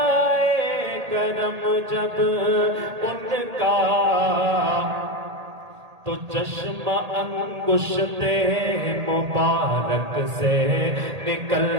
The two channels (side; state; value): left; late; 1.8 ms